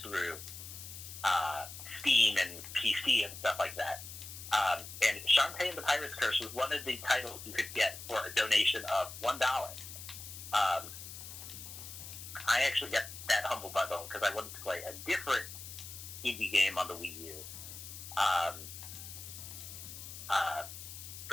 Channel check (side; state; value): left; noise; hiss, 11 dB below the sound